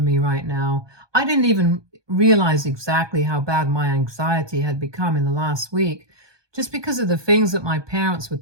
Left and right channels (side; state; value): left; late; 1.2 ms